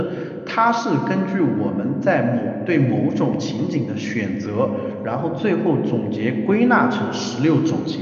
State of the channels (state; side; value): identical; both; correlation 1.00